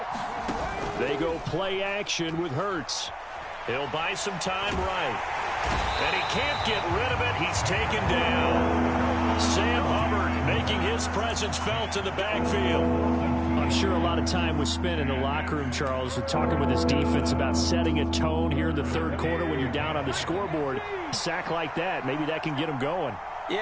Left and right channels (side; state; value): both; identical; correlation 1.00